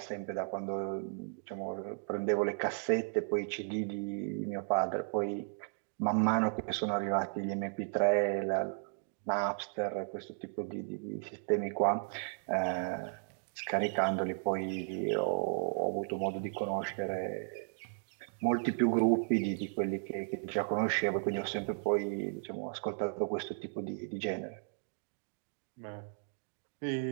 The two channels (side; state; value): left; silent; digital silence